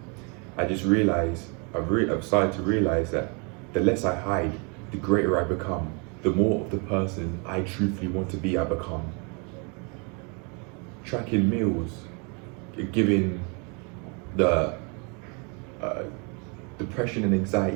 I just realized, I've started to realize that the less I hide, the greater I become. The more of the person I truthfully want to be, I become. Tracking meals, giving the depression and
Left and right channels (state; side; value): quieter; left; 34.1 dB